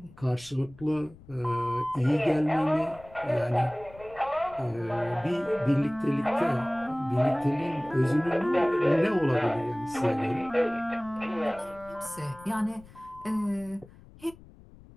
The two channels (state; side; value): noise; left; rumble, 22 dB below the sound